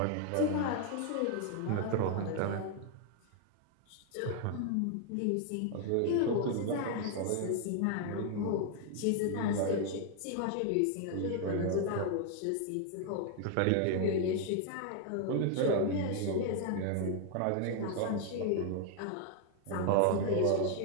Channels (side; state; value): both; different; correlation 0.00